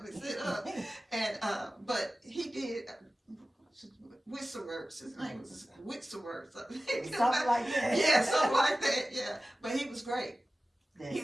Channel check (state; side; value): normal; both; correlation 0.96